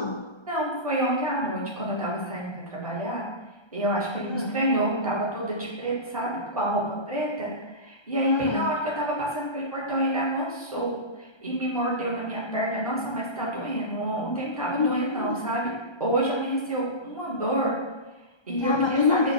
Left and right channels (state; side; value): late; right; 1.3 ms